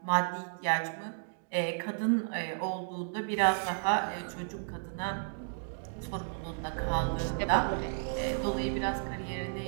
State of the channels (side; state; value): left; silent; digital silence